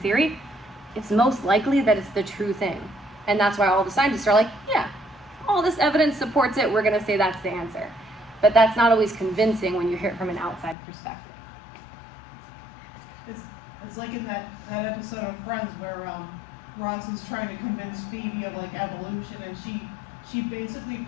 it's most likely that it's the true thing. And that's why all the scientists are like, yeah, all this evidence supports it, we're gonna say that's the answer. But that's not always convincing when you hear it from an outside perspective. It's like in that episode of Friends where Ross is trying to convince Phoebe of like evolution, and she basically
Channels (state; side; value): drops out; right; at 10.8 s